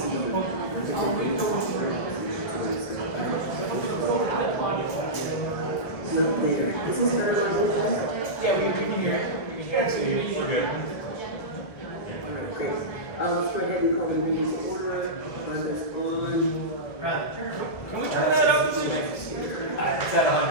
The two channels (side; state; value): right; late; 1.9 ms